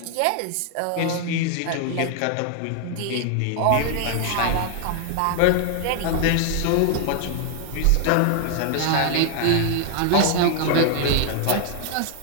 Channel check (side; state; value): both; different; correlation 0.00